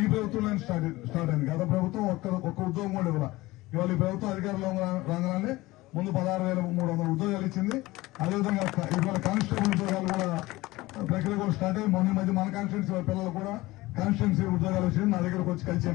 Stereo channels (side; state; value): right; quieter; 19.5 dB